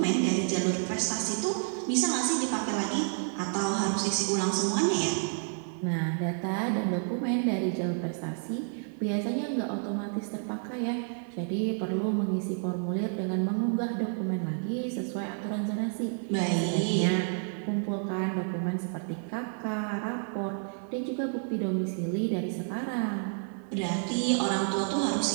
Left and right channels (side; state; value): left; silent; 58 dB below the other